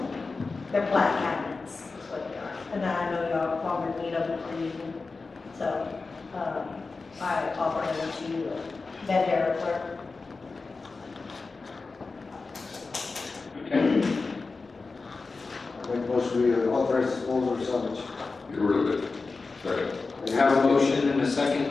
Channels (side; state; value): right; quieter; 4.0 dB